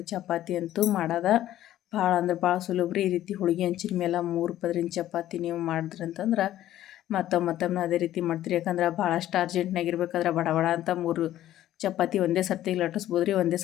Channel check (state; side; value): quieter; right; 13.1 dB